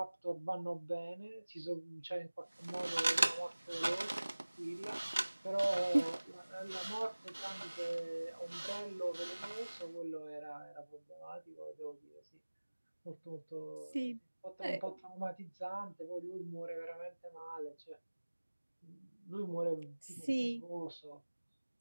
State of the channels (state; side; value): inverted; both; correlation -1.00